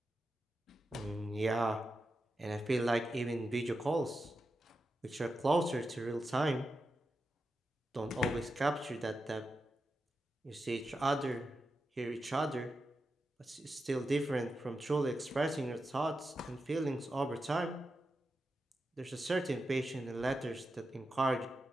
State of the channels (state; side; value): normal; both; correlation 0.89